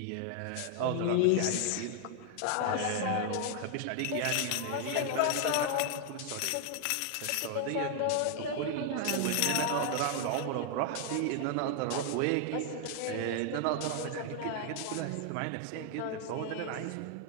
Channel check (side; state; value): both; different; correlation 0.00